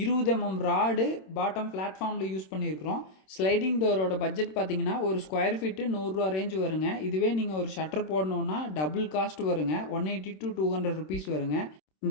20 mm ராடு பாட்டம் பிளாட்ஃபார்மில் யூஸ் பண்ணியிருக்கிறோம். ஸ்லைடிங் டோரோட பட்ஜெட் பார்த்தீங்கன்னா ஒரு ஸ்கொயர் ஃபீட்டு 100 ரூபா ரேஞ்சு வருங்க. இதுவே நீங்கள் ஒரு ஷட்டர் போடணுன்னா டபுள் காஸ்ட் வருங்க, 180 to 200 ருபீஸ் வருங்க.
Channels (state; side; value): late; right; 26 ms